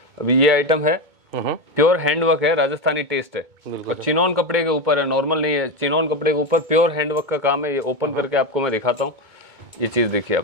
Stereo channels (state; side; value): late; left; 2.2 ms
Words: अभी ये आइटम है प्योर हैंडवर्क है, राजस्थानी टेस्ट है और चिनॉन कपड़े के ऊपर है, नॉर्मल नहीं है। चिनॉन कपड़े के ऊपर प्योर हैंडवर्क का काम है। ये ओपन करके आपको मैं दिखाता हूँ। ये चीज देखिए आप,